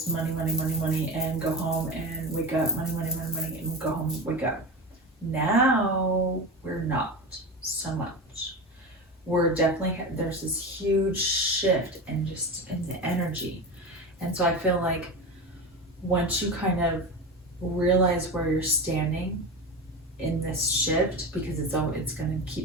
money, money, money, money, and go home and wake up, money, money, money, money, and go home, wake up. Now we're not so much. We're definitely, there's this huge shift in just in the energy. And so I feel like once you kind of realize where you're standing in this shift, because it's going to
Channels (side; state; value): both; normal; correlation 0.24